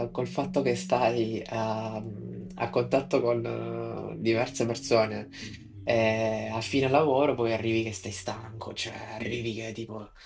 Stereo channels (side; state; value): both; identical; correlation 1.00